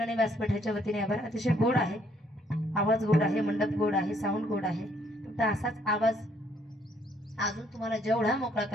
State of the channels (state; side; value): normal; both; correlation 0.67